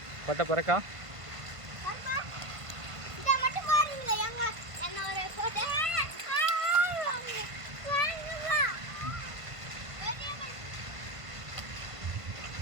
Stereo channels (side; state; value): left; late; 1.5 ms